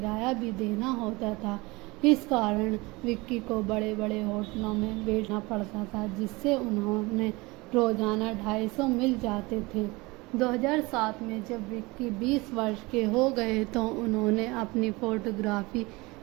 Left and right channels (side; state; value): left; quieter; 23.5 dB